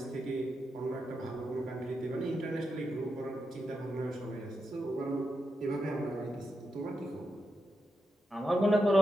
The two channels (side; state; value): both; normal; correlation 0.86